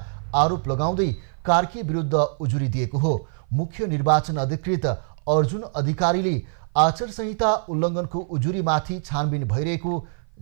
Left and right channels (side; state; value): left; silent; 56 dB below the other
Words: आरोप लगाउँदै कार्की विरुद्ध उजुरी दिएको हो। मुख्य निर्वाचन अधिकृत अर्जुन अधिकारीले आचार संहिता उल्लङ्घनको उजुरीमाथि छानबिन भइरहेको